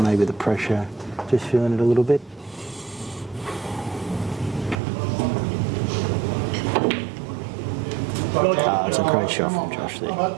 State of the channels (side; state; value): left; drops out; at 4.8 s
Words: the pressure, just feeling it a little bit. It's a great shot from Josh there.